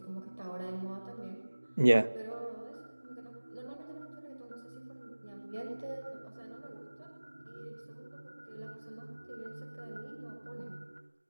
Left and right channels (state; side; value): inverted; both; correlation -1.00